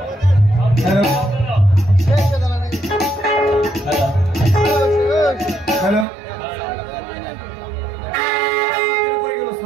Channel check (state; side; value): drops out; left; at 6.1 s